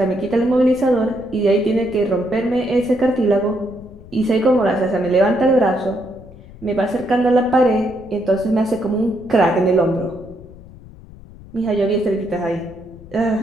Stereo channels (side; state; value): left; noise; rumble, 19 dB below the sound